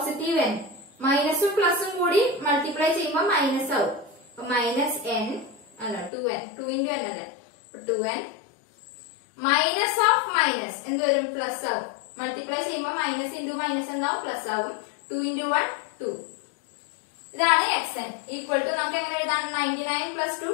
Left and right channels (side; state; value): right; drops out; at 6.1 s